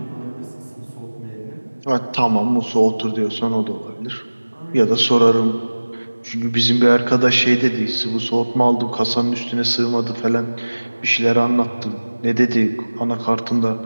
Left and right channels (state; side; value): inverted; both; correlation -1.00